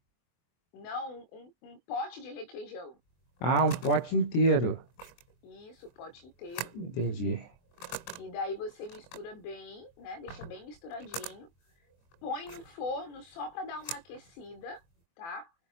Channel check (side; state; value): right; late; 24 ms